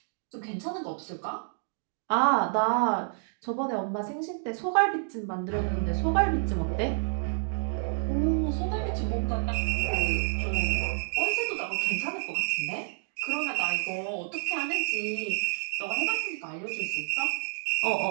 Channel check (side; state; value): left; silent; digital silence